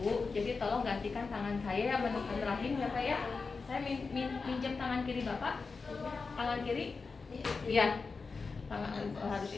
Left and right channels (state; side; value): quieter; right; 4.5 dB